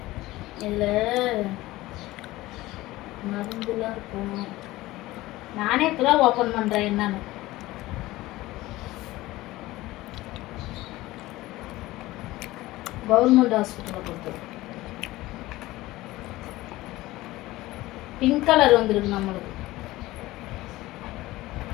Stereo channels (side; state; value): right; quieter; 18.0 dB